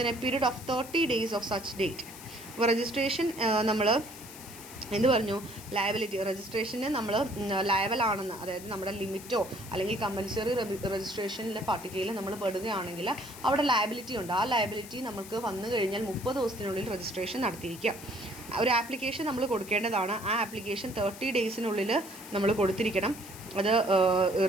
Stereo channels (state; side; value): noise; left; hiss, 15 dB below the sound